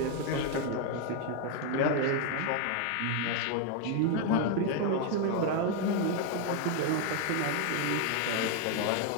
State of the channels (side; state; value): both; different; correlation 0.01